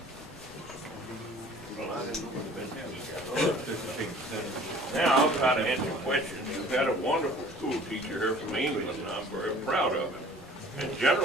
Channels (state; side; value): normal; both; correlation 0.50